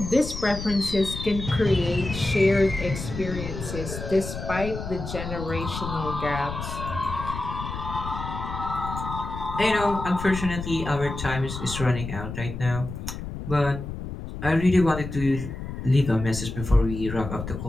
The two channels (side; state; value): left; noise; rumble, 7 dB below the sound